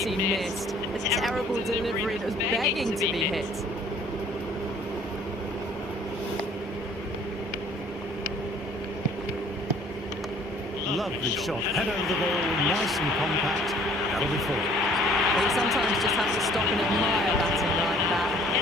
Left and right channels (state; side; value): normal; both; correlation 0.56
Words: missed. A terrible delivery that was begging to be hit. Lovely shot. Head over the ball, nice and compact. That'll be four. Well, you sometimes just have to stop and admire batting like that.